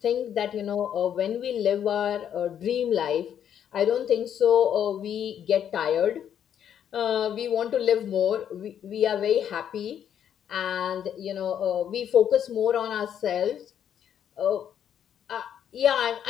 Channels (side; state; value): right; quieter; 9.3 dB